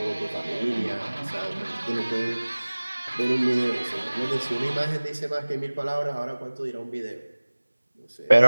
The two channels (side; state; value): both; inverted; correlation -1.00